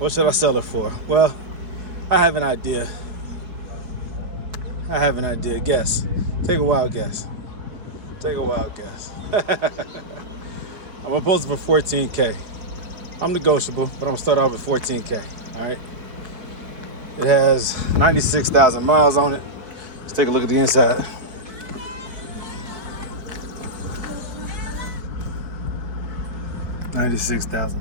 should I sell her for? Well, I have an idea. Guess. Take a wild guess. I'm gonna post it for 14K. I'm negotiable, but I'm gonna start off with 14K. All right. It has 96,000 miles on it. Let's take a look at the inside. $96,000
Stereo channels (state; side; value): late; left; 4.6 ms